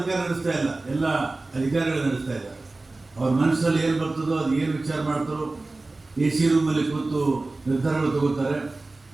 ನಡೆಸ್ತಾ ಇಲ್ಲ, ಎಲ್ಲ ಅಧಿಕಾರಿಗಳು ನಡೆಸ್ತಾ ಇದ್ದಾರೆ. ಅವ್ರ ಮನಸ್ಸಲ್ಲಿ ಏನು ಬರ್ತದೋ ಅದು ಏನು ವಿಚಾರ ಮಾಡ್ತಾರೋ ಎ ಸಿ ರೂಮಲ್ಲಿ ಕೂತು ನಿರ್ಧಾರಗಳು ತಗೋತಾರೆ.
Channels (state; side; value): quieter; left; 3.2 dB